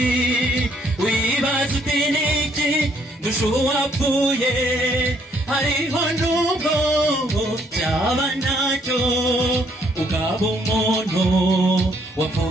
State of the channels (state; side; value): normal; both; correlation 0.68